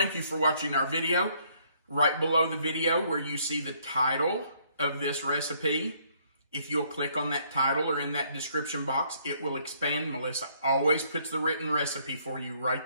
you for watching our video. Right below the video where you see the title of this recipe, if you'll click on that title or in that description box, it will expand. Melissa always puts the written recipe for you right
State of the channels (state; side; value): inverted; both; correlation -0.67